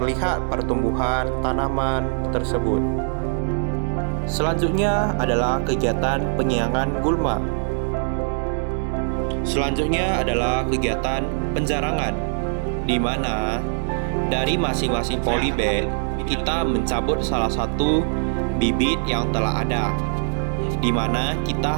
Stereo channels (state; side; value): silent; left; digital silence